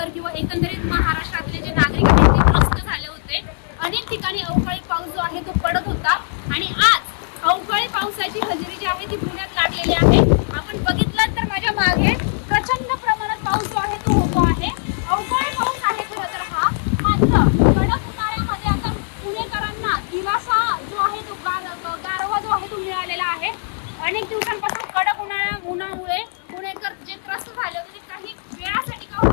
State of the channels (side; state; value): right; silent; digital silence